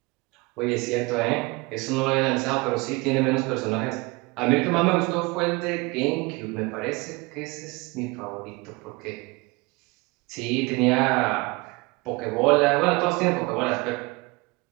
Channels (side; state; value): left; quieter; 25.0 dB